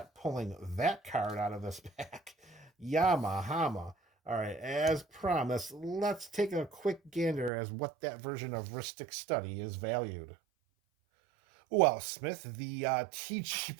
pulling that card out of this pack. Yamahama. All right, as promised, let's take a quick gander as what that version of Ristic Study is valued. Well, Smith, the TCG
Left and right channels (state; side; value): drops out; left; at 7.5 s